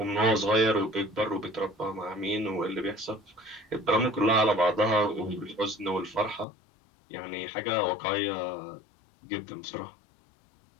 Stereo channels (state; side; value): drops out; right; at 6.5 s